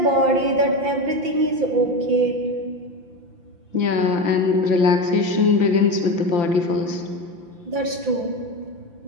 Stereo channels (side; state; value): left; late; 5.8 ms